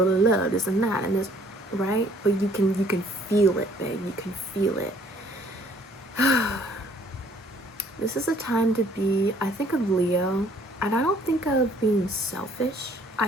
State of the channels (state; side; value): normal; both; correlation 0.60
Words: This and that and this, right? But you can feel it, babe. You can feel it. This is a time to be, I think of Leo, and I don't think of being selfish.